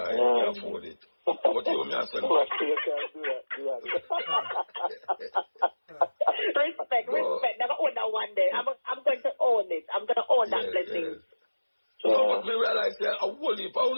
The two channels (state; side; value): inverted; both; correlation -1.00